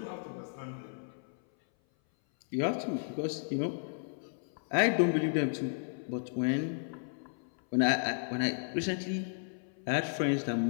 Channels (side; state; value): right; silent; 55 dB below the other